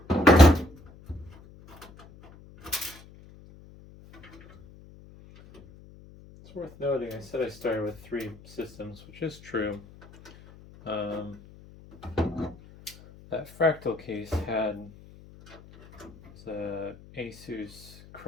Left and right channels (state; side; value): noise; left; hum, 21 dB below the sound